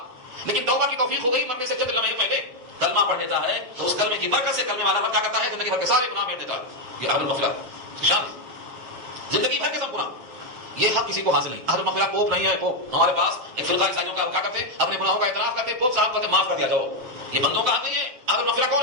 لیکن توبہ کی توفیق ہو گئی, مرنے سے چند لمحے پہلے کلمہ پڑھ لیتا ہے, تو اس کلمے کی برکت سے کلمے والا رب کیا کرتا ہے, زندگی بھر کے سارے گناہ میٹ دیتا ہے. یہ اہل المغفرہ کی شان ہے. زندگی بھر کے سب گناہ, یہ حق کسی کو حاصل نہیں. اہل المغفرہ پوپ نہیں ہے. پوپ ہمارے پاس ایک فرقہ عیسائیوں کا کیا کرتے ہیں, اپنے گناہوں کا اعتراف کرتے ہیں, پوپ صاحب کہتے ہیں معاف کر دیا جاؤ. یہ بندوں کا حق نہیں ہے. اہل المغفرہ کون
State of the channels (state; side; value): late; left; 7.7 ms